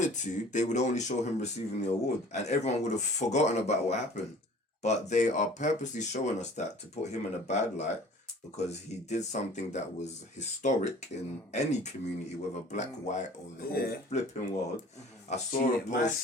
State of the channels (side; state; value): both; normal; correlation 0.48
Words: to, they would only show him receiving the award, and everyone would have forgotten about what happened. But they are purposely showing us that to put him in a bad light because he did something that was historic in any community, whether black, white, or the whole flipping world. I saw a Man